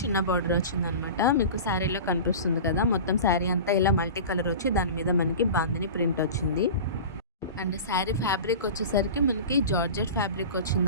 బార్డర్ వచ్చిందనమాట. మీకు శారీలో కనిపిస్తుంది కదా, మొత్తం శారీ అంతా ఇలా మల్టీ కలర్ వచ్చి దాని మీద మనకి బాందిని ప్రింట్ వచ్చింది. అండ్ శారీ ఫ్యాబ్రిక్ వచ్చేసరికి మనకి జార్జెట్ ఫ్యాబ్రిక్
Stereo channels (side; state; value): both; inverted; correlation -0.34